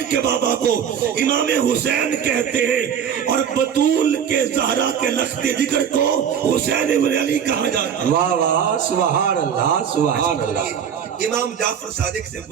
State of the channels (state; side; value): quieter; left; 8.1 dB